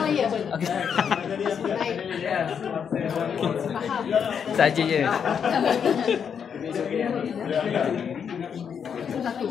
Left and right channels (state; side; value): quieter; right; 7.3 dB